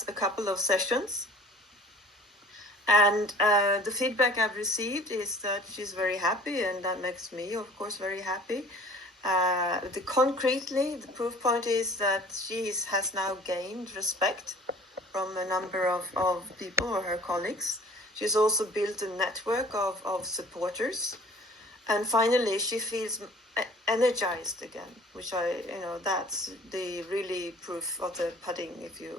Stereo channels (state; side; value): normal; both; correlation 0.49